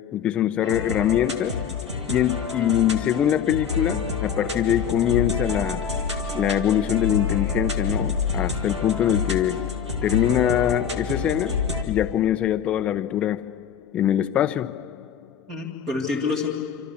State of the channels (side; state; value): right; quieter; 8.5 dB